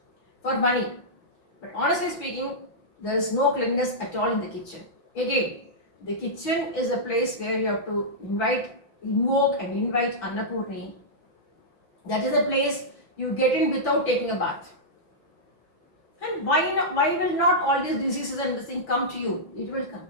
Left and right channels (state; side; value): late; right; 5.9 ms